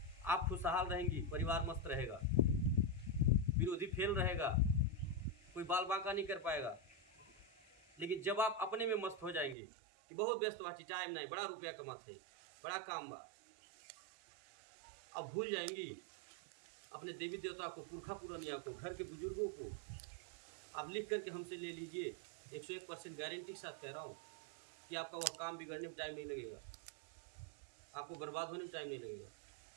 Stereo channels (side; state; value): left; drops out; at 9.6 s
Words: आप खुशहाल रहेंगी, परिवार मस्त रहेगा, विरोधी फेल रहेगा, कोई बाल बांका नहीं कर पाएगा। लेकिन जब आप अपने में मस्त हो जाएंगे कि बहुत व्यस्त बाची, टाइम नहीं, बड़ा रुपया कमाते, बड़ा काम बा, अब भूल जाएंगी अपने देवी देवता को, पुरखा पुरनिया को, घर के बुजुर्गों को। आप लिख करके हमसे ले लीजिए, 101% गारंटी के साथ कह रहा हूँ कि आपका वह काम बिगड़ने में टाइम नहीं लगेगा, आपको बर्बाद होने में टाइम नहीं लगेगा।